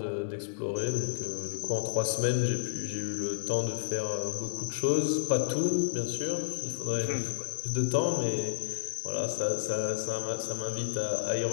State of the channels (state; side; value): silent; right; 57 dB below the other